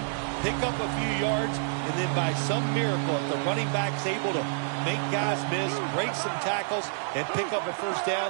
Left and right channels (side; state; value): left; silent; digital silence